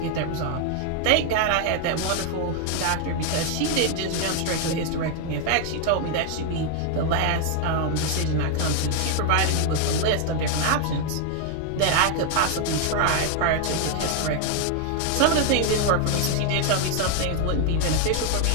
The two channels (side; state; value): both; different; correlation 0.00